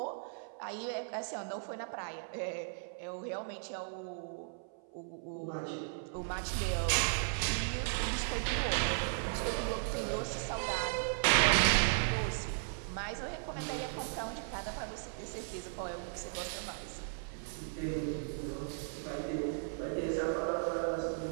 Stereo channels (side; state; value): left; silent; 53 dB below the other